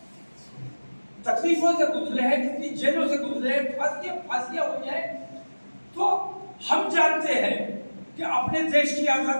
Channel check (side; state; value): both; inverted; correlation -1.00